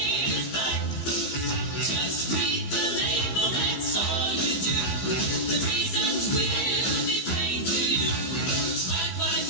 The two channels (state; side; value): late; right; 15 ms